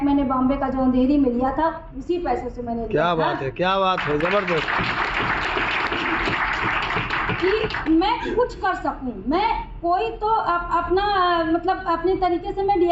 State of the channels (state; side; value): identical; both; correlation 1.00